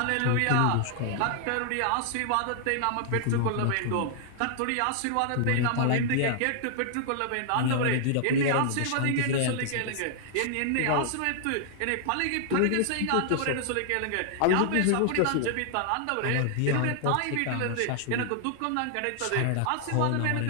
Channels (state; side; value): different; both; correlation -0.01